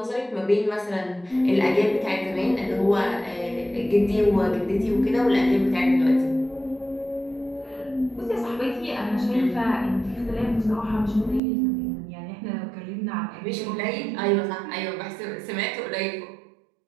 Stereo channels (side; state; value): left; drops out; at 11.4 s